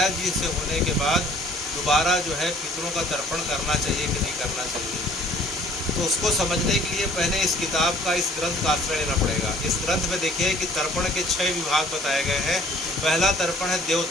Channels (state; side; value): normal; both; correlation 0.55